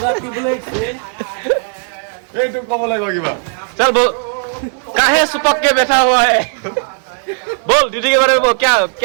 এইটো ক'ব লাগিব কিবা चल बोल काहे सुपक के बैठा हुआ है बोल ड्यूटी के बारे में बोल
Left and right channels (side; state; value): left; silent; 70 dB below the other